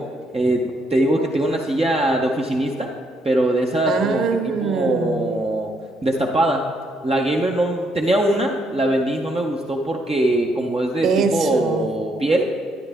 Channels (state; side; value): normal; both; correlation 0.74